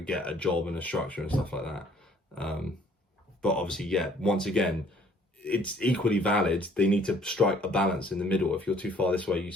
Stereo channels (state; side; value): normal; both; correlation 0.59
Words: get a job and a structure and stuff like that. But obviously, yeah, once again, it's equally valid. They need to strike a balance in the middle. If you're too far this way, you